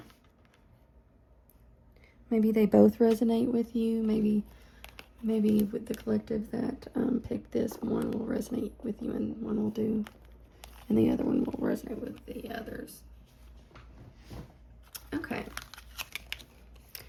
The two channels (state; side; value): identical; both; correlation 1.00